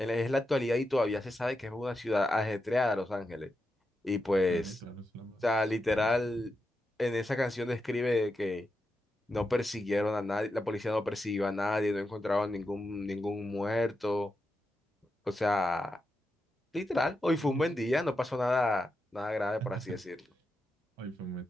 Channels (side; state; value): both; normal; correlation 0.87